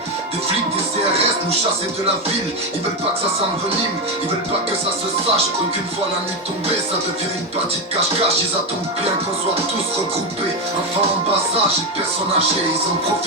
des flics, des CRS nous chasser de la ville. Ils veulent pas que ça s'envenime, ils veulent pas que ça se sache. Qu'une fois la nuit tombée, ça devient une partie de cache-cache. Ils attendent bien qu'on soit tous regroupés. Enfants en bas âge et personnes âgées, ils en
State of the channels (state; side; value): normal; both; correlation 0.10